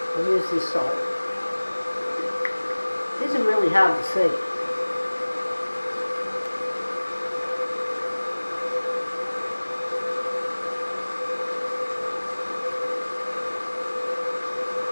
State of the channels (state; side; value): inverted; both; correlation -1.00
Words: I'll use this side. These are really hard to see.